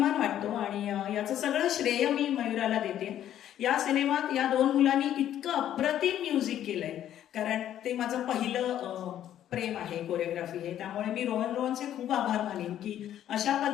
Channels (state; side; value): quieter; right; 11.2 dB